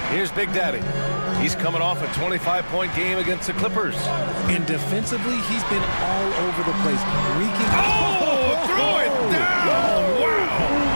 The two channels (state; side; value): inverted; both; correlation -1.00